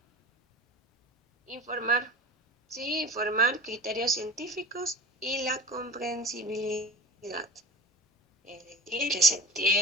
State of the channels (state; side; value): normal; both; correlation 0.36